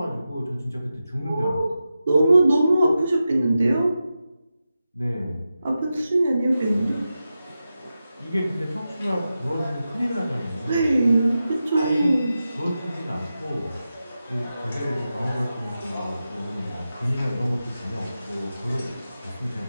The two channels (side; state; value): both; inverted; correlation -0.91